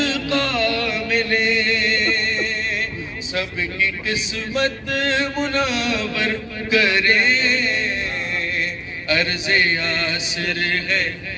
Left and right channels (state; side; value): identical; both; correlation 1.00